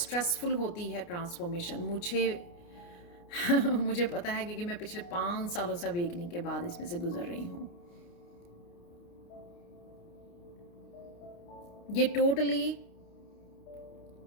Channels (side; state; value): right; late; 29 ms